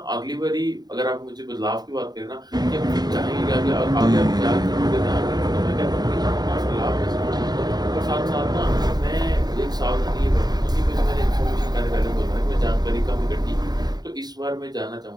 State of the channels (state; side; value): late; left; 0.20 ms